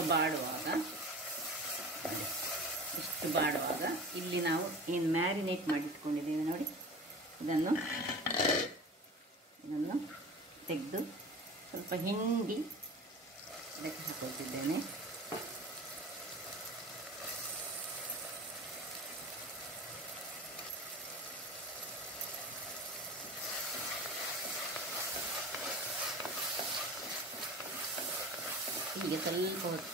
ಬಾಡುವಾಗ, ಇಷ್ಟು ಬಾಡುವಾಗ ಇಲ್ಲಿ ನಾವು ಏನು ಮ್ಯಾರಿನೇಟ್ ಮಾಡಿಟ್ಕೊಂಡಿದ್ದೇವೆ ನೋಡಿ, ಇದನ್ನು ತೆಗೆದು ಸ್ವಲ್ಪ ಹಿಂಡಿ ಇದಕ್ಕೆ ಹಾಕೊಳ್ತಿದ್ದೇನೆ. ಹೀಗೆ ಸ್ವಲ್ಪ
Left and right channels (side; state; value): both; normal; correlation 0.36